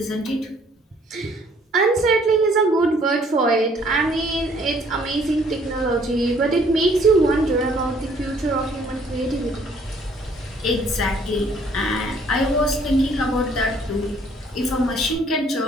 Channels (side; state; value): both; normal; correlation 0.61